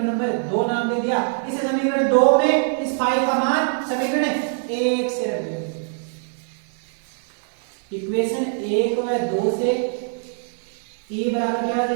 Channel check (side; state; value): left; silent; 56 dB below the other